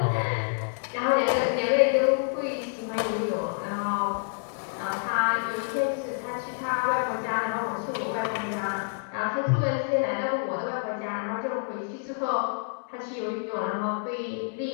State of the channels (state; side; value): silent; right; digital silence